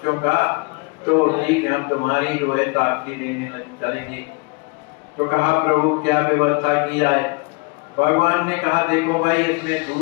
का, तो ठीक है हम तुम्हारी जो है साक्षी देने चलेंगे। तो कहा प्रभु क्या व्यवस्था किया है? भगवान ने कहा देखो भाई इसमें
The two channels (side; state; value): right; quieter; 28.9 dB